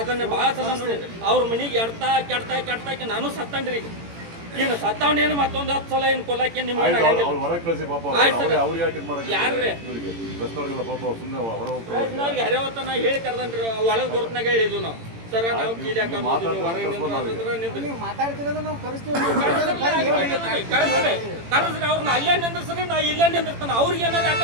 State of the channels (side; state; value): left; late; 18 ms